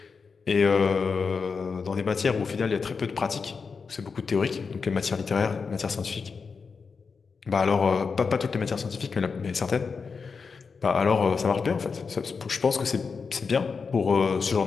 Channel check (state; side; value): quieter; right; 5.2 dB